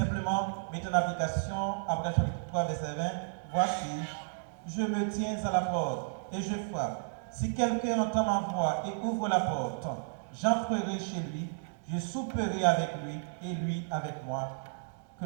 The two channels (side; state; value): left; silent; digital silence